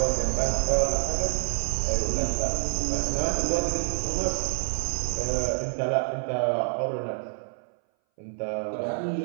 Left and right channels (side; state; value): left; silent; 59 dB below the other